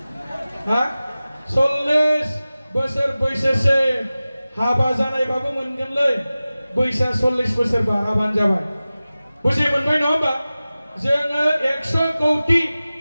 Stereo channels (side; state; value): both; inverted; correlation -0.97